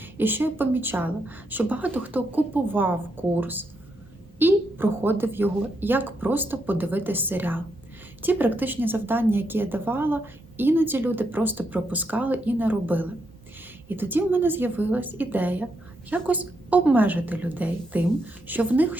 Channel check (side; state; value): both; normal; correlation 0.80